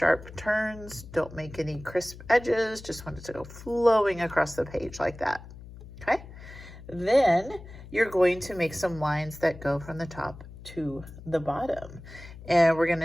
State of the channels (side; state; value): left; noise; hum, 16 dB below the sound